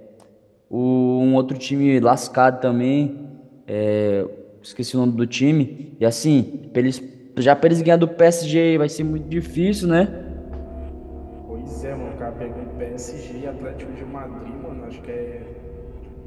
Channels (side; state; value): both; identical; correlation 1.00